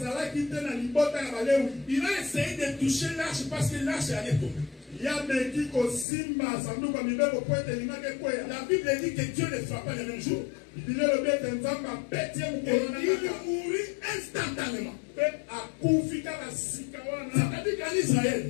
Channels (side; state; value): right; drops out; at 6.1 s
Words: il a essayé de toucher l'arche parce que l'arche allait tomber. La Bible dit que Dieu ne frappa le même jour. Et il mourut instantanément. C'est-à-dire qu'en Israël,